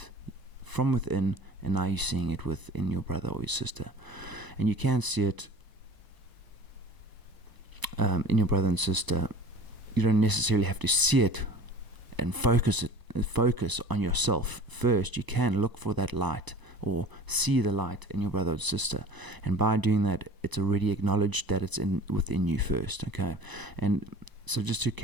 from within, and now you're seeing it within your brother or your sister. And you can see it in your brother and sister. You don't necessarily have to see it and focus on yourself first. You can look for that light, or see the light in your brother or sister, and by doing that, it's already acknowledged that it's within you first. Okay, and so just to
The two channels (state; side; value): late; left; 1.0 ms